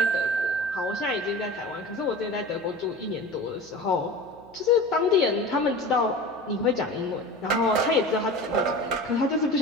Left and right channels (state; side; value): noise; right; hum, 25 dB below the sound